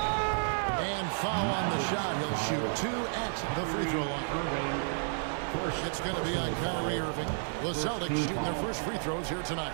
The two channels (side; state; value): left; silent; digital silence